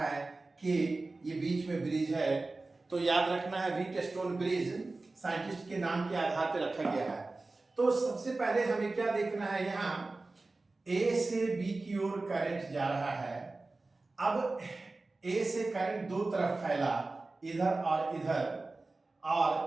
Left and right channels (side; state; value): left; quieter; 3.3 dB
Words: कि ये बीच में ब्रिज है। तो याद रखना है व्हीटस्टोन ब्रिज साइंटिस्ट के नाम के आधार पर रखा गया है। तो सबसे पहले हमें क्या देखना है, यहाँ A से B की ओर करंट जा रहा है। अब A से करंट 2 तरफ फैला, इधर और इधर,